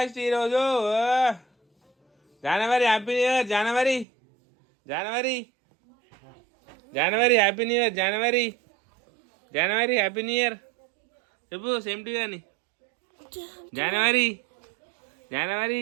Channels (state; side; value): drops out; left; at 4.0 s